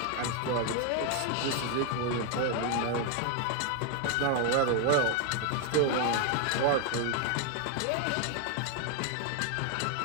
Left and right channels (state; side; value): different; both; correlation 0.01